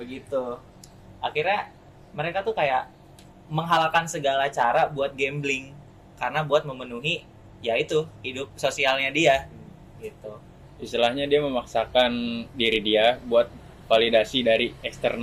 Akhirnya mereka tuh kayak menghalalkan segala cara buat gambling karena buat memenuhi yaitu hidup sosialnya dia gitu. Istilahnya dia memaksakan diri dia buat validasi dari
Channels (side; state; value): both; identical; correlation 1.00